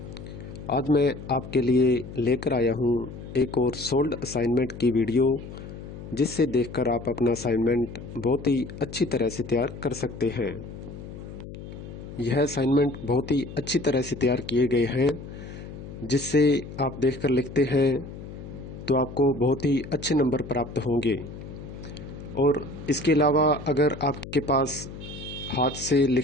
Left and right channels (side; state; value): left; noise; hum, 12 dB below the sound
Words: आज मैं आपके लिए लेकर आया हूँ एक और सोल्ड असाइनमेंट की वीडियो, जिससे देखकर आप अपना असाइनमेंट बहुत ही अच्छी तरह से तैयार कर सकते हैं। यह असाइनमेंट बहुत ही अच्छी तरह से तैयार किए गए हैं, जिससे आप देखकर लिखते हैं तो आपको बहुत ही अच्छे नंबर प्राप्त होंगे। और इसके अलावा अगर आपके पास हाथ से